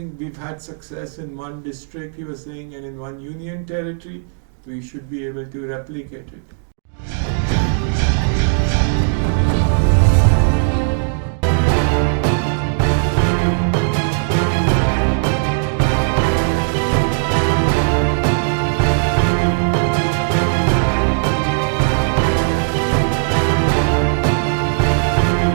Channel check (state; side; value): silent; left; digital silence